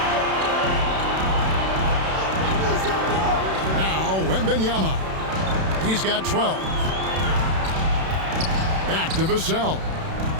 Now Wembanyama. He's got 12. Back to Vassell.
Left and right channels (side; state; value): left; late; 31 ms